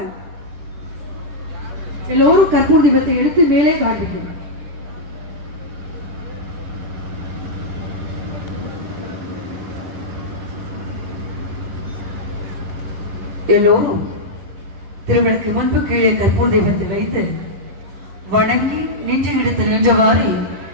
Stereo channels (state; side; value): late; left; 10 ms